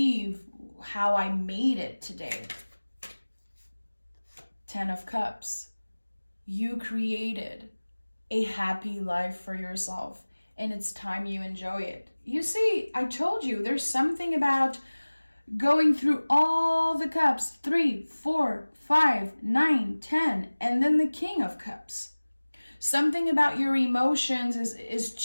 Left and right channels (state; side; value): inverted; both; correlation -1.00